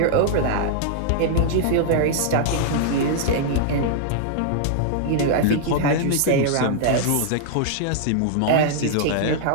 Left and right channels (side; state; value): both; different; correlation -0.01